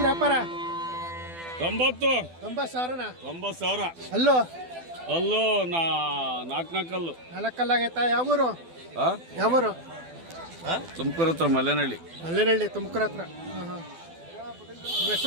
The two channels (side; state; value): left; late; 12 ms